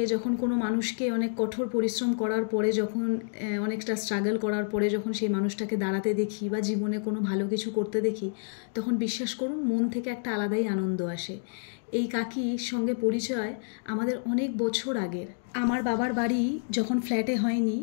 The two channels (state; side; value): silent; right; digital silence